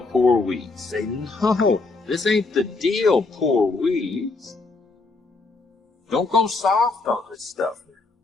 poor weeds. Say, no, this ain't the deal, poor weeds. Don't go soft on this stuff.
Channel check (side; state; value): right; quieter; 3.6 dB